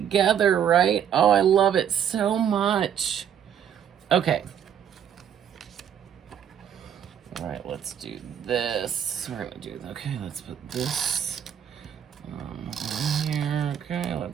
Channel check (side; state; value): left; quieter; 9.0 dB